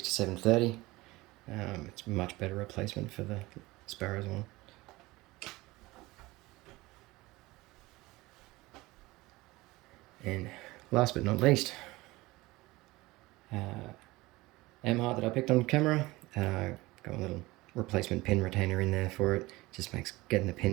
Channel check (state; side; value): quieter; left; 20.4 dB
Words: It's a much better replacement for the Sparrows one. And last but not least, M-Heart that I picked on camera. Got a little replacement pin retainer in there for it. Just makes getting the